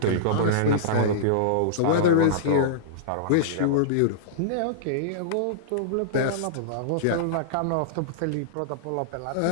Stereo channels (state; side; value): different; both; correlation -0.03